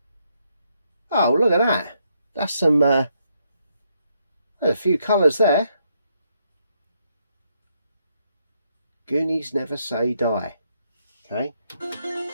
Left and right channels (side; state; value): both; inverted; correlation -0.76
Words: Oh, look at that. That's some there's a few colours there. Goonies never say die. Okay.